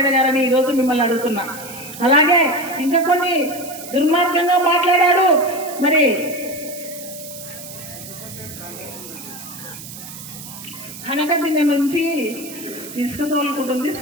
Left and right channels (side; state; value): right; noise; hiss, 13 dB below the sound